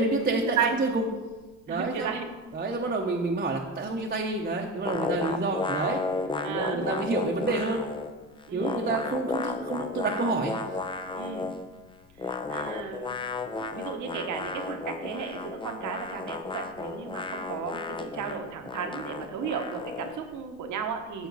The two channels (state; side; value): noise; left; rumble, 28 dB below the sound